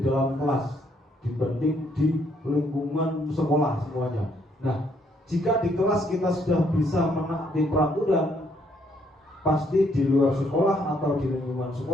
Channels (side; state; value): both; normal; correlation 0.70